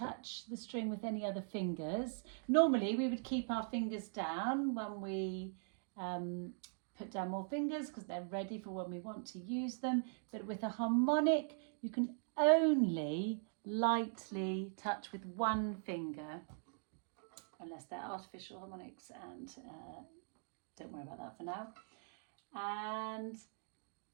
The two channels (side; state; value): left; silent; digital silence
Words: the string with any other fingers. Normally we would keep our fingers down when we put down more fingers because they're ready for when we want to use them. But with a harmonic, you can only lightly touch with 1 finger, unless they're artificial harmonics, and don't worry about that for now. And